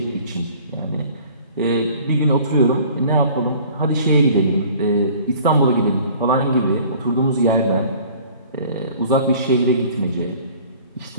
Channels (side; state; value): both; inverted; correlation -0.49